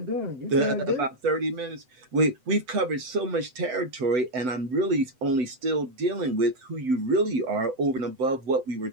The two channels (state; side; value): late; left; 7.9 ms